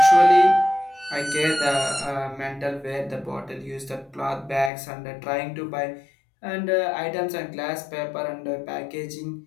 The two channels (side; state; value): right; drops out; at 4.7 s